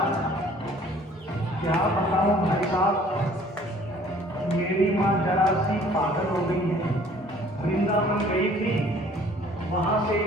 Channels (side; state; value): both; normal; correlation 0.54